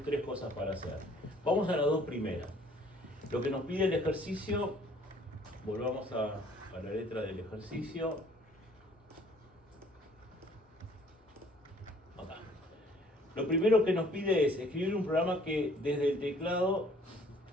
3 cosas para hacer. Vamos a las 2 primeras. Lo que nos pide el ejercicio, volvamos a la letra del ejercicio. Acá. Lo primero que nos pide es escribir un programa que desde el teclado,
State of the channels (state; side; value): normal; both; correlation 0.58